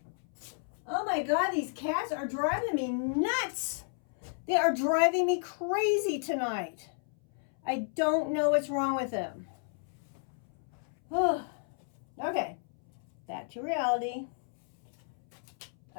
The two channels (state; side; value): silent; right; 56 dB below the other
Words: Oh my God, these cats are driving me nuts. They are driving me crazy tonight. I don't know what's wrong with them. Okay, back to reality.